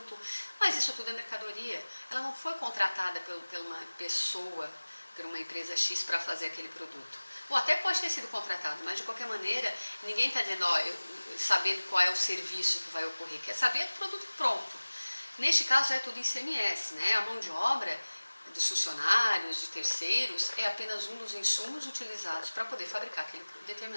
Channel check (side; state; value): both; inverted; correlation -1.00